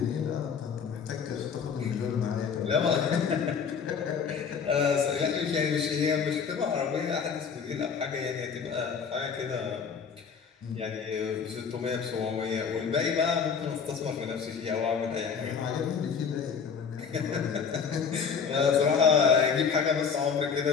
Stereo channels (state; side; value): quieter; right; 6.3 dB